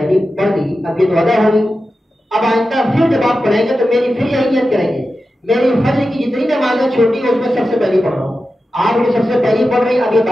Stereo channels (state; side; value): normal; both; correlation 0.92